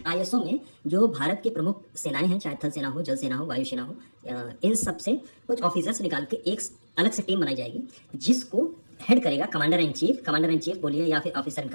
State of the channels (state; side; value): inverted; both; correlation -1.00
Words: ISO में जो भारत की प्रमुख सेनाएं हैं, चाहे थल सेना हो, जल सेना हो, वायु सेना हो, इन सब से कुछ ऑफिसर्स निकाल के एक अलग से टीम बनाई जाएगी, जिसको हेड करेगा कमांडर इन चीफ बोलिए या फिर ऑफिसर इन